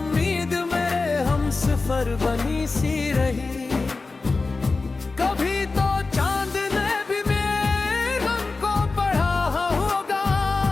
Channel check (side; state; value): right; quieter; 3.8 dB